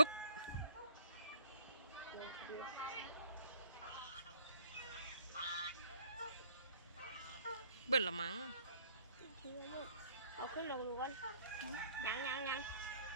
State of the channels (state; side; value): inverted; both; correlation -0.58